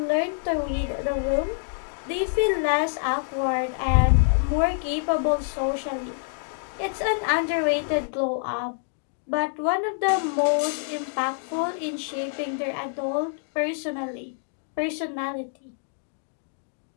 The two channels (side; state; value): right; silent; digital silence